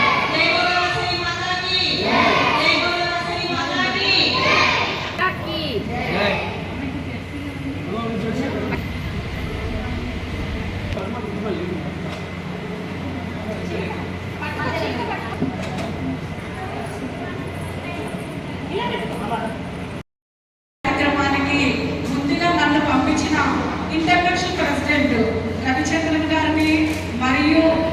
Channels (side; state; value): both; identical; correlation 1.00